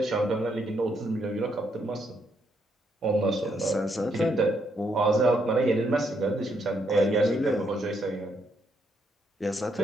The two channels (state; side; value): normal; both; correlation 0.75